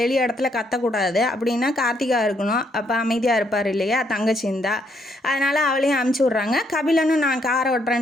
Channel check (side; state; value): both; normal; correlation 0.73